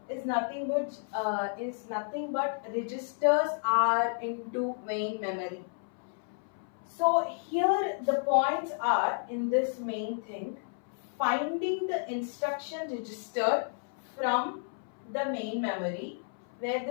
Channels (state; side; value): silent; right; 57 dB below the other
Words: is nothing but registers are into main memory. So here the points are in this main thing: finding the instruction register from the main memory, where